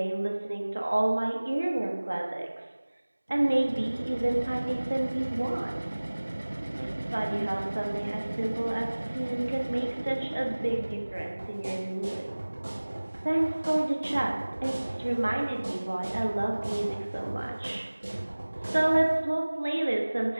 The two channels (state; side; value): inverted; both; correlation -1.00